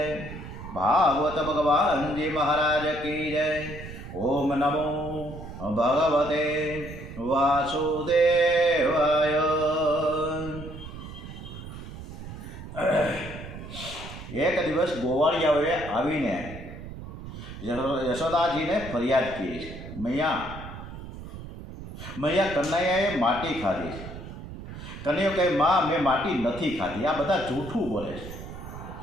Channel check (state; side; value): noise; right; rumble, 12 dB below the sound